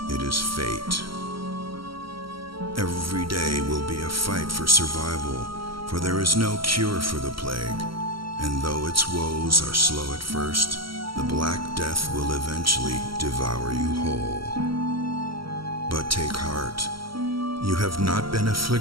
it is fate. Every day will be a fight for survival, for there is no cure for the plague, and though its woes are slow at first, the Black Death will eventually devour you whole. But take heart, you have not been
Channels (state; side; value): late; left; 0.74 ms